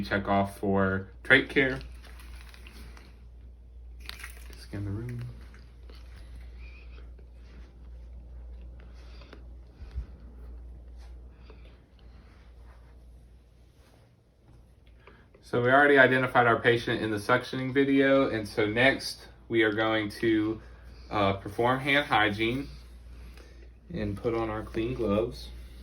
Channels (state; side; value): identical; both; correlation 1.00